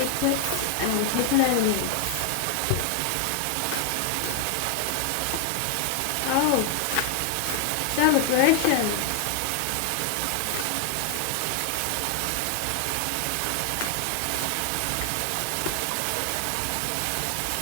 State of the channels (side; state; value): both; different; correlation 0.00